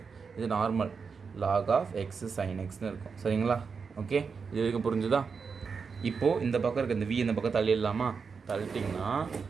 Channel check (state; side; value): quieter; left; 5.5 dB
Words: இது normal log of X sine எக்ஸ்னு இருக்கும். சரிங்களா? ஓகே, இது வரைக்கும் புரிஞ்சுதா? இப்போது இந்த பக்கம் இருக்க இந்த v இந்த பக்கம் தள்ளிடலாமா? தள்ளிட்டிங்கன்னா